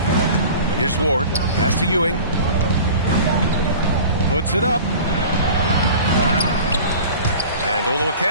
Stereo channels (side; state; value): both; inverted; correlation -0.40